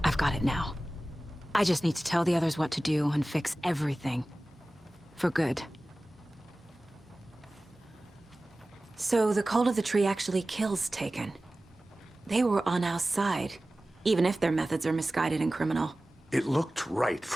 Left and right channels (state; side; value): normal; both; correlation 0.97